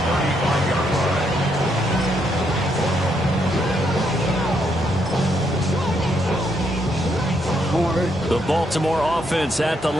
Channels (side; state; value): both; normal; correlation 0.76